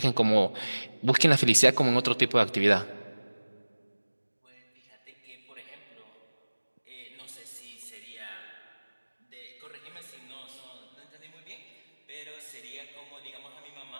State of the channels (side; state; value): both; inverted; correlation -1.00